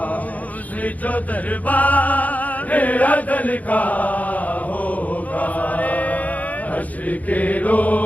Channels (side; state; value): right; late; 0.075 ms